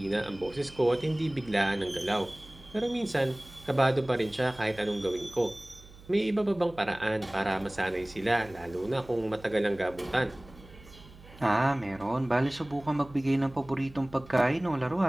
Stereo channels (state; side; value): noise; right; hum, 21 dB below the sound